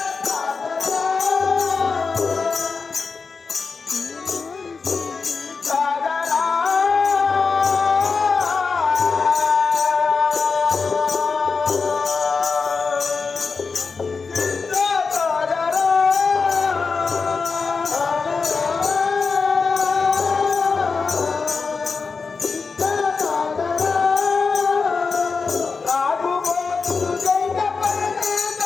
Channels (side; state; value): right; quieter; 4.8 dB